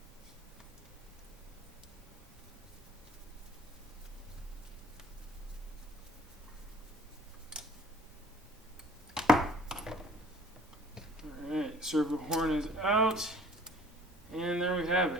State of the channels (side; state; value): both; normal; correlation 0.53